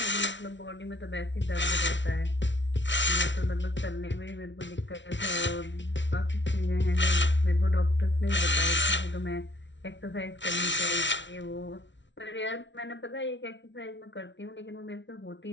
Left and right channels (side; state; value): right; late; 0.54 ms